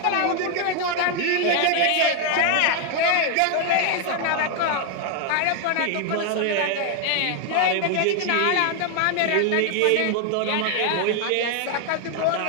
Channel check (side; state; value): both; different; correlation 0.00